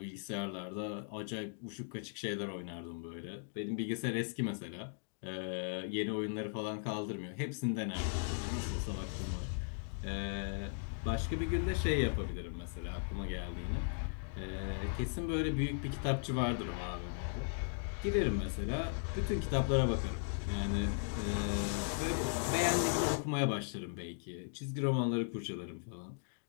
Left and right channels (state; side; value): silent; right; digital silence